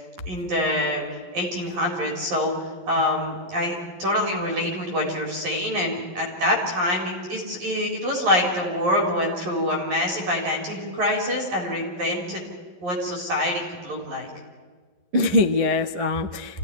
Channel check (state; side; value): late; left; 11 ms